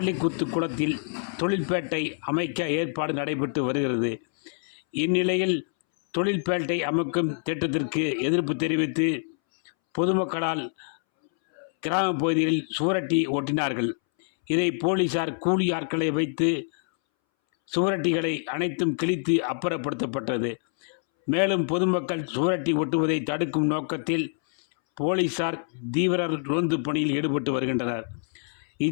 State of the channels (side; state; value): right; silent; 61 dB below the other